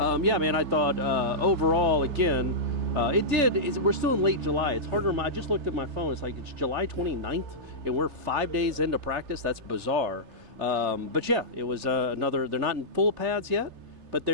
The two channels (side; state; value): left; late; 3.3 ms